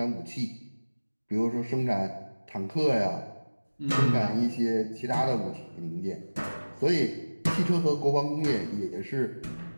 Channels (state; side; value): inverted; both; correlation -1.00